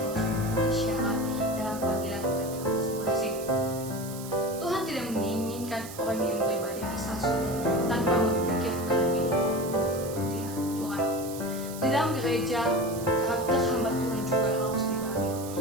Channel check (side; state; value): right; noise; hiss, 13 dB below the sound